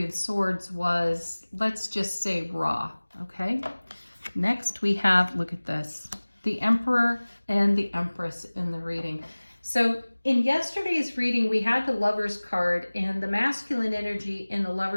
of Swords was, let's just say, raw. Okay. Next we have, look at this, the Emperor and the Empress in the reading. So in yesterday's reading, we had the Lover's card, and the masculine energy in the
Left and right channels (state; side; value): inverted; both; correlation -1.00